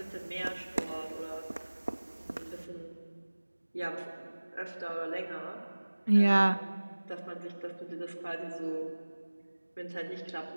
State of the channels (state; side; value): inverted; both; correlation -1.00